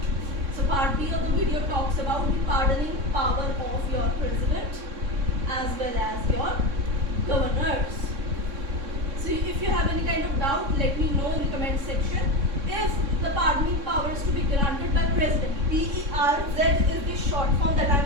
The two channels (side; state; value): left; late; 3.6 ms